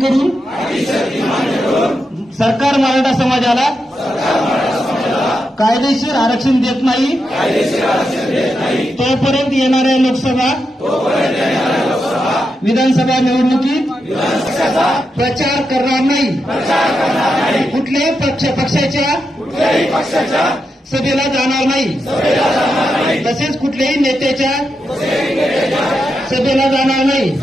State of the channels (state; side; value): normal; both; correlation 0.86